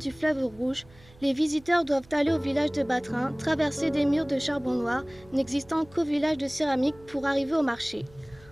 fleuve Rouge. Les visiteurs doivent aller au village de Batrin, traverser des murs de charbon noir n'existant qu'au village de céramique pour arriver au marché.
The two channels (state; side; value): noise; right; hum, 25 dB below the sound